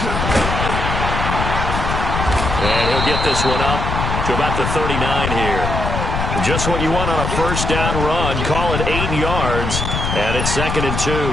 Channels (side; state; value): left; noise; rumble, 2 dB below the sound